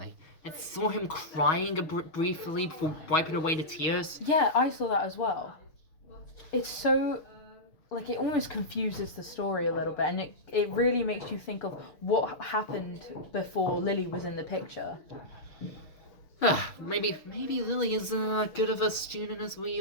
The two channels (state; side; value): late; right; 6.3 ms